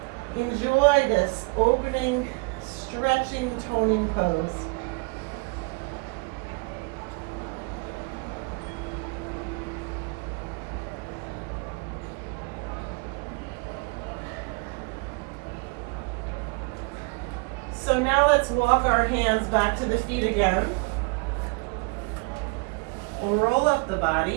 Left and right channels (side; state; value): left; quieter; 30.1 dB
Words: Enjoy this opening, stretching, toning pose. So now let's walk our hands back to the feet again. We'll roll up the